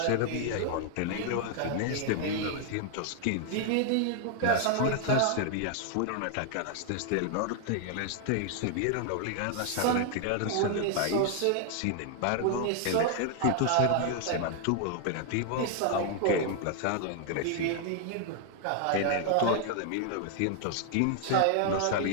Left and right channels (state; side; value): different; both; correlation 0.00